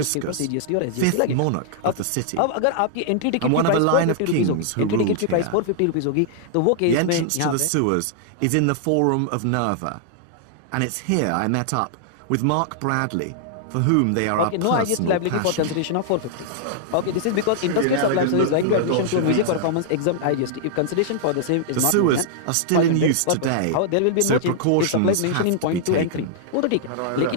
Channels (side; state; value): both; different; correlation -0.01